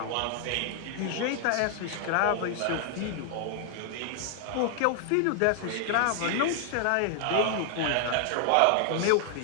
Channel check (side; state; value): both; different; correlation 0.00